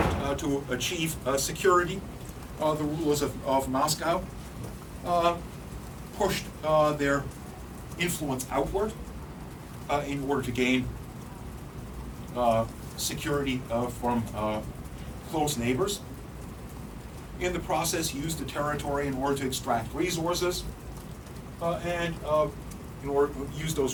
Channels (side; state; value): both; identical; correlation 1.00